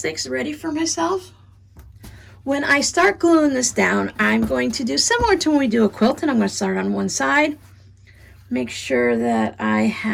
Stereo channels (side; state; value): both; identical; correlation 1.00